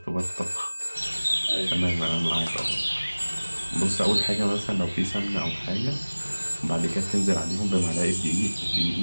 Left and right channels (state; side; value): inverted; both; correlation -1.00